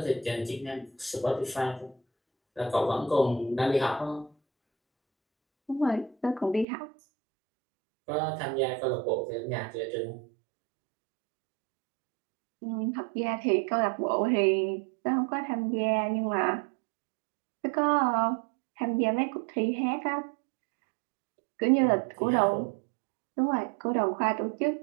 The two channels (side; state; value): left; drops out; at 6.7 s